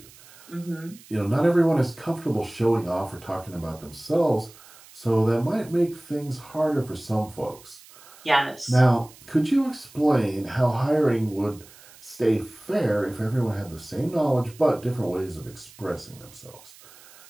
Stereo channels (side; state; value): right; noise; hiss, 23 dB below the sound